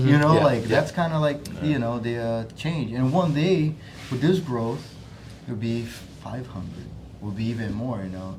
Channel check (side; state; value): both; identical; correlation 1.00